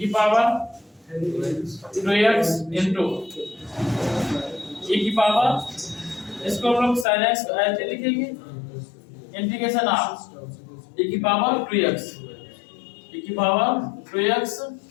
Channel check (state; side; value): drops out; right; at 7.1 s